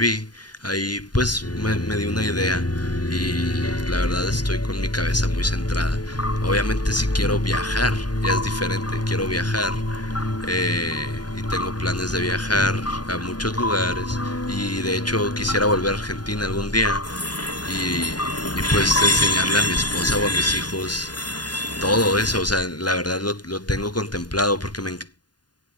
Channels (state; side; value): late; right; 0.70 ms